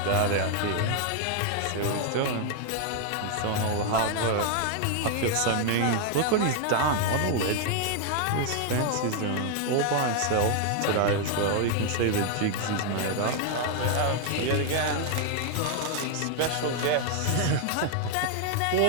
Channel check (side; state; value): both; different; correlation 0.00